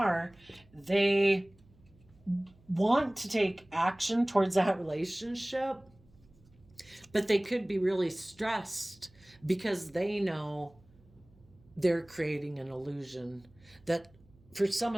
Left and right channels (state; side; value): noise; right; hum, 28 dB below the sound